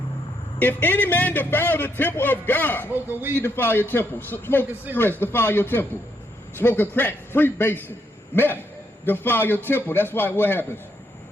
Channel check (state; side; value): normal; both; correlation 0.76